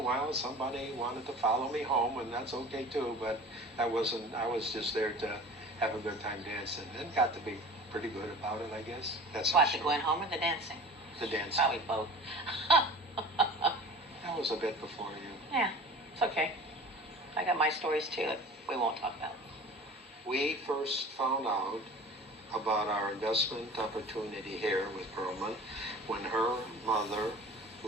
somebody wanted to follow me home, and that's okay too, but I was just there to have a good time dancing, and got to be pretty good about it, I guess. That's What, the going home or the dancing? The dancing. Probably both. That was a bit before you. Yeah, it's okay. I got my stories too that we won't talk about. We first found out about our investment opportunity here with Pearlman when her mother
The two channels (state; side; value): normal; both; correlation 0.40